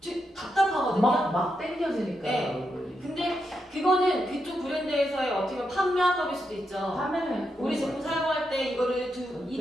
답답하거든요. 막 땡겨지니까. 네. 얼굴이. 근데 그거는 그쪽 브랜드에서의 어떻게 보면 판매학법일 수도 있죠. 화면에 우리 제품 사용할 때 이거를 네.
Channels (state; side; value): normal; both; correlation 0.83